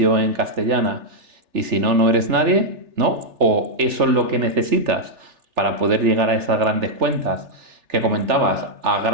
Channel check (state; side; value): late; left; 3.4 ms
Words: en castellana y si no, no eres nadie, ¿no? O eso es lo que necesitas para poder llegar a esas grandes cuentas que comentabas, a